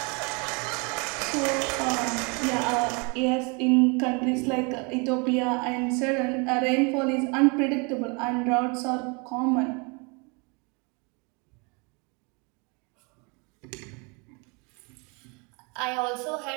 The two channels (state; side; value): quieter; left; 31.5 dB